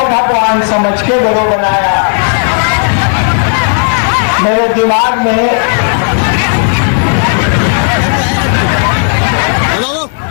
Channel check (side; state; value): right; silent; 56 dB below the other